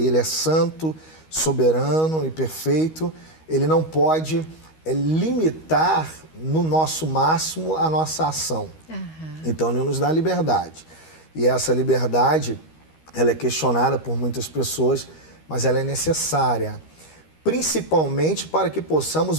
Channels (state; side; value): late; right; 13 ms